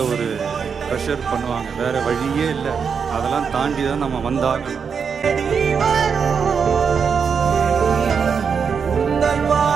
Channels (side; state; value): left; quieter; 6.3 dB